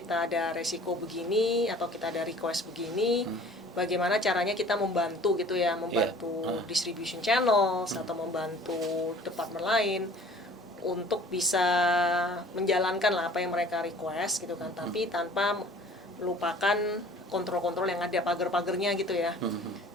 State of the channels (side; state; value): both; normal; correlation 0.49